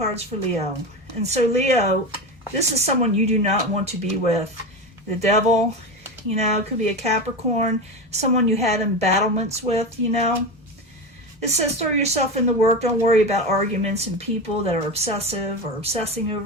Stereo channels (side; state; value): both; normal; correlation 0.21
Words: for Leo. And so Leo, this is someone you do not want to be with. The Devil, it could be a Capricorn, someone you had embattlements with, It says throw yourself in the work. Don't worry about arguments and people that are obsessive or obsessing